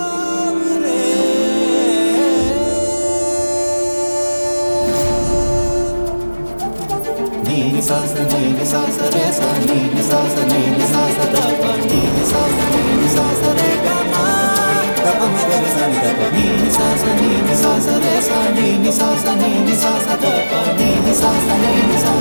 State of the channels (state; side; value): inverted; both; correlation -1.00